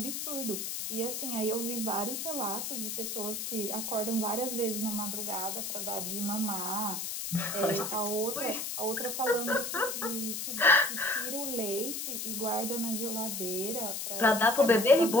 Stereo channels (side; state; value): left; noise; hiss, 4 dB below the sound